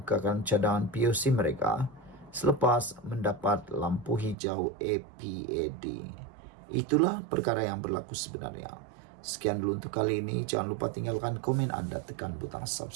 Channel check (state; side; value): drops out; left; at 4.4 s